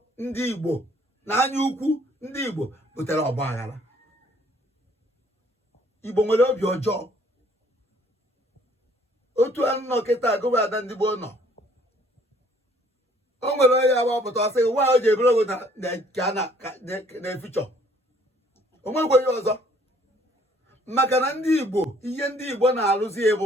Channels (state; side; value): normal; both; correlation 0.60